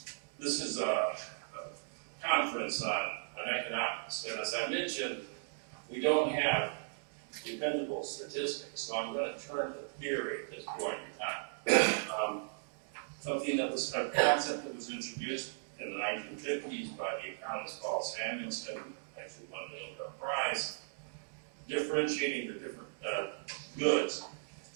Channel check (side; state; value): left; silent; digital silence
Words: This is a conference on economics, and as I mentioned, we don't have dependable statistics, so I'm going to turn to theory at this point in time. Something that was a concept that was introduced in the 1950s by the economist Paul Samuelson, actually won the Nobel Prize, differentiating the different goods,